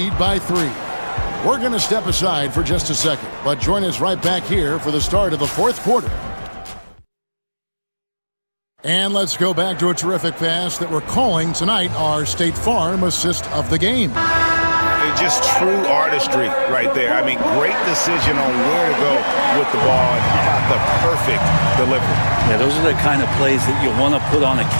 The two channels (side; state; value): both; inverted; correlation -1.00